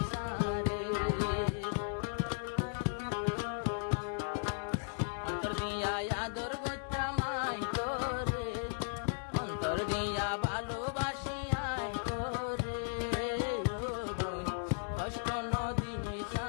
সারে অন্তর দিয়া আদর গইতাম আই তোরে অন্তর দিয়া ভালোবাসি আই তোরে ও বোন কষ্ট নদী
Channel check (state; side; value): silent; right; digital silence